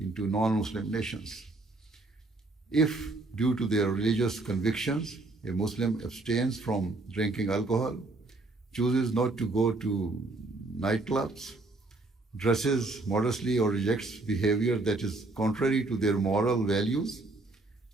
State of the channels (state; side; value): quieter; left; 3.1 dB